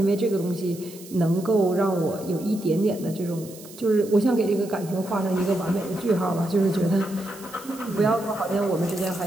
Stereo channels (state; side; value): noise; right; hiss, 18 dB below the sound